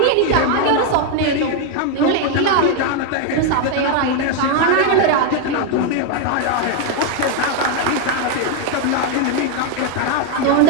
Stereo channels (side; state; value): both; different; correlation 0.01